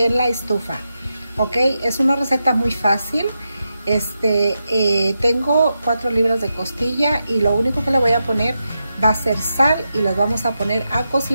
la estufa. Ok, es una receta muy fácil. Tengo 4 libras de costilla y lo único que le voy a poner va a ser sal y las vamos a poner a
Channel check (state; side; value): inverted; both; correlation -0.88